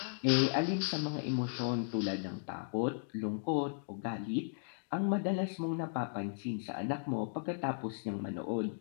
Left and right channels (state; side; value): silent; right; digital silence